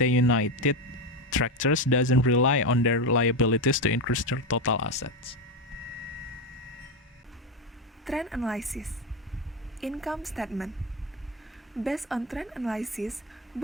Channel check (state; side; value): normal; both; correlation 0.14